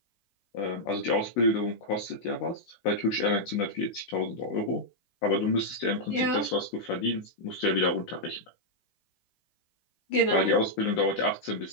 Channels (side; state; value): right; late; 16 ms